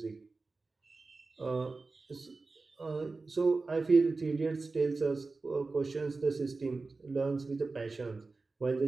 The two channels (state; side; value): quieter; left; 3.8 dB